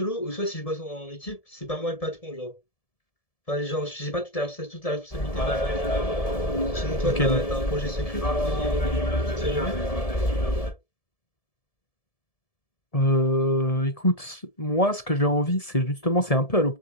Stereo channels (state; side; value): late; right; 1.7 ms